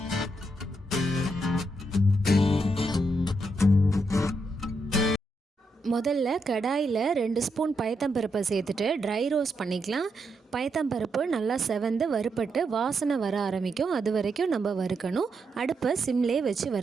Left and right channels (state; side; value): normal; both; correlation 0.81